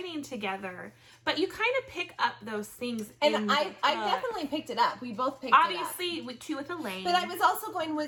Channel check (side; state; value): both; identical; correlation 1.00